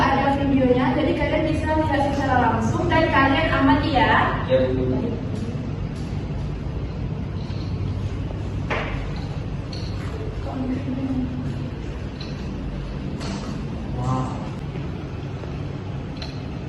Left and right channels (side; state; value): both; identical; correlation 1.00